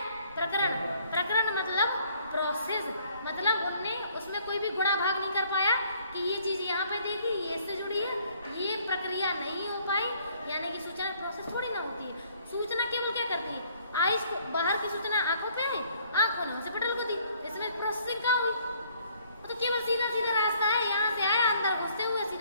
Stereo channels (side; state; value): both; inverted; correlation -0.62